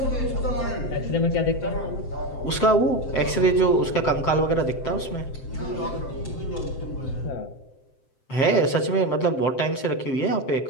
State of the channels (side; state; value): right; late; 7.7 ms